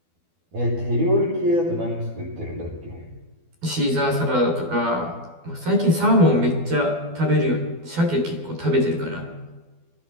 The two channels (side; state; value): left; late; 12 ms